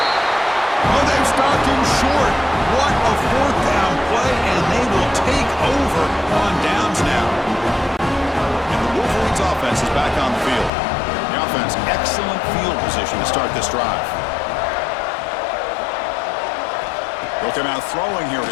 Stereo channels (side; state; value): right; drops out; at 10.7 s